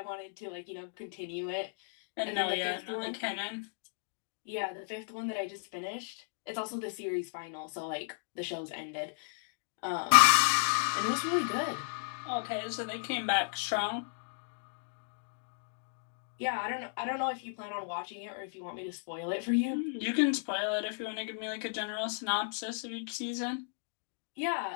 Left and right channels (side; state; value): right; silent; digital silence